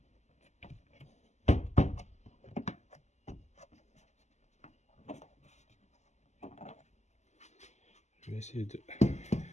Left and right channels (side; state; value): right; late; 0.33 ms